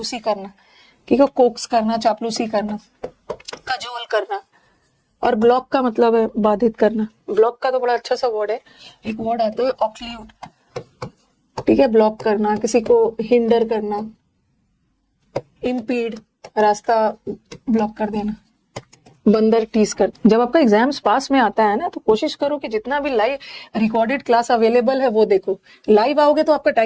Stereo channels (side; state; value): both; identical; correlation 1.00